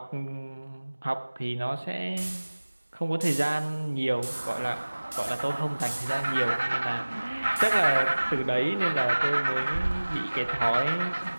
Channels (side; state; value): both; inverted; correlation -1.00